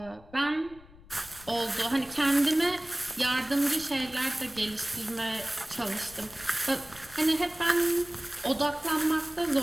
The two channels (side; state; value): left; noise; rumble, 22 dB below the sound